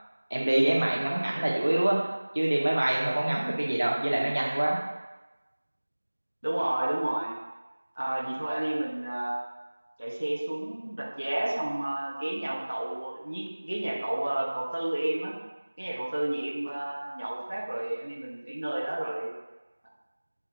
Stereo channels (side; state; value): both; inverted; correlation -1.00